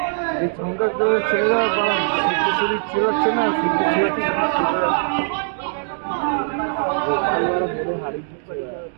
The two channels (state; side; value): silent; left; digital silence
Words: এই সংখ্যা করে ছেলেরা ছেড়াচ্ছে না